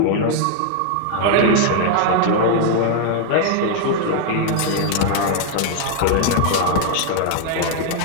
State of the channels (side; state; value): both; different; correlation 0.00